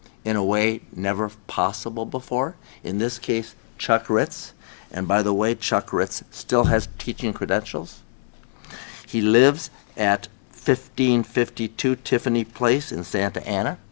in a way never possible before. In this case, Chuck Ritz. And by the way, Chuck Ritz still has teaching credentials. He lives at 1552 Tiffany Place in Santa Ana.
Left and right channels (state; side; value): silent; right; digital silence